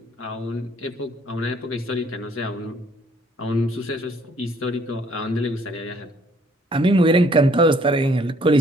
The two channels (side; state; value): both; normal; correlation 0.62